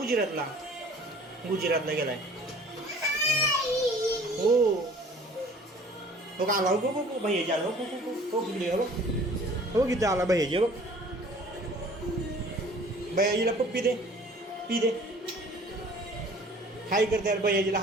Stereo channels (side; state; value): both; normal; correlation 0.50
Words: गुजरातला गेलाय हो हो का आला हो हो भैयाजी आला हो हो तिकडे हो किती आला भैयाजी बघ भैयाजीला पप्पी दे पी दे हाय कर त्याला भैयाजीला